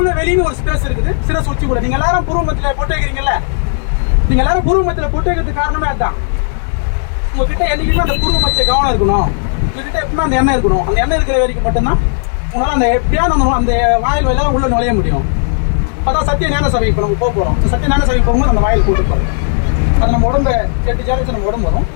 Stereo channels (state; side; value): silent; right; digital silence